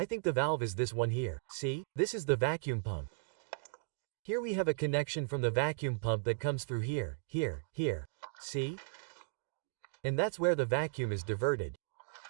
think the valve is this one here. See? This is the vacuum pump. Here we have a connection from the vacuum pump that comes through here, here. See? And that's where the vacuum is diverted.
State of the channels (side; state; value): left; silent; digital silence